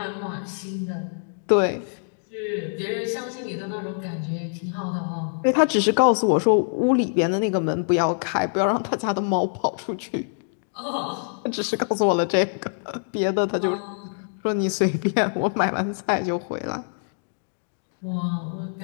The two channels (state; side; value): silent; right; digital silence